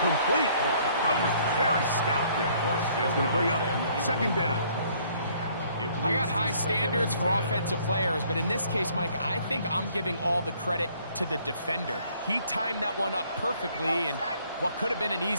Coverage very stout there. That's going to bring up 2nd down. I got high standards for offensive players, but in this case, Mike, I think I'm giving all the credit to the defender. He timed that one up perfectly, and what could have been an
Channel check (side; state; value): both; inverted; correlation -0.62